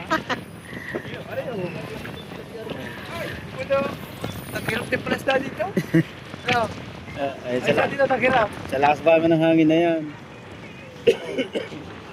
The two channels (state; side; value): identical; both; correlation 1.00